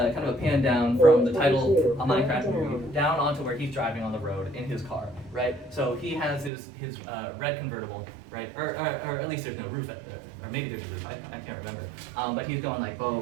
pan down from the title of Minecraft movie down onto where he's driving on the road in his car, right? So he has his red convertible, right, or at least there's no roof, or maybe there's a roof, I can't remember. But he's going like blah, blah,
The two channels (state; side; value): drops out; left; at 6.5 s